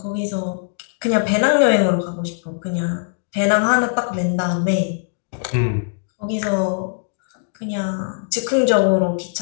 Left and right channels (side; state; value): right; silent; digital silence